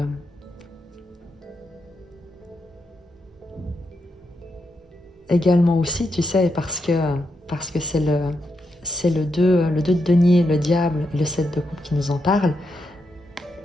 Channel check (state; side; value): normal; both; correlation 0.83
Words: également aussi, tu sais, parce que c'est le 2 de denier, le diable, et le 7 de coupe qui nous en parle.